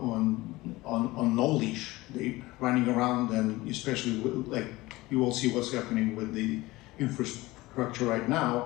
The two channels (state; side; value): quieter; right; 19.8 dB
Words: no leash. They're running around, and especially you will see what's happening with the infrastructure right